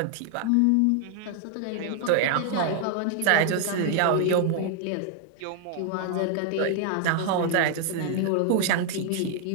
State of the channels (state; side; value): different; both; correlation 0.00